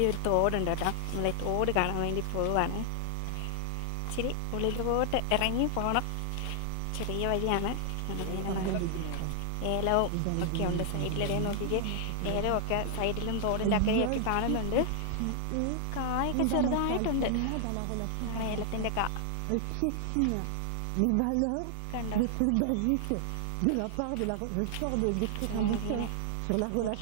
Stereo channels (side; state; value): both; different; correlation 0.00